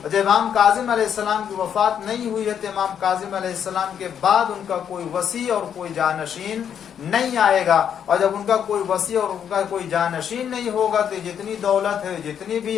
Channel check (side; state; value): right; quieter; 8.5 dB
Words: جب امام کاظم علیہ السلام کی وفات نہیں ہوئی ہے تو امام کاظم علیہ السلام کے بعد ان کا کوئی وصی اور کوئی جانشین نہیں آئے گا، اور جب ان کا کوئی وصی اور ان کا کوئی جانشین نہیں ہوگا تو جتنی دولت ہے، جتنی